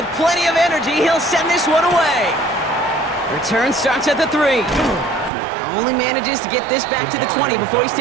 plenty of energy, he'll send this one away. Return starts at the 3. Only manages to get this back to the 20 before he's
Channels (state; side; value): drops out; left; at 5.3 s